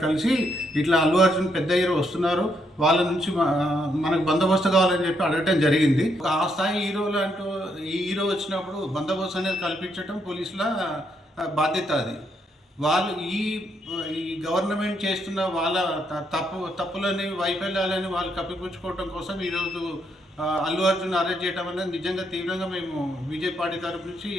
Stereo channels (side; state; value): both; normal; correlation 0.76